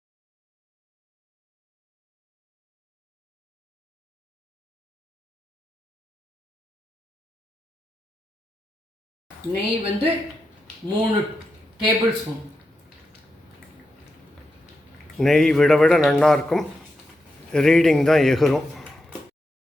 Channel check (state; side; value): normal; both; correlation 0.87